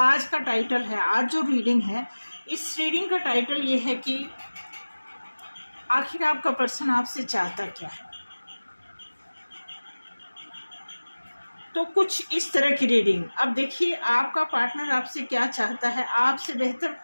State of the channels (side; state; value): both; inverted; correlation -1.00